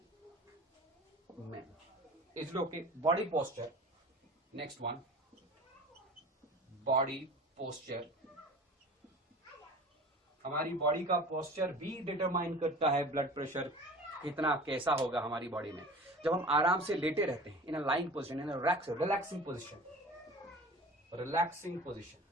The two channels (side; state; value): both; normal; correlation 0.40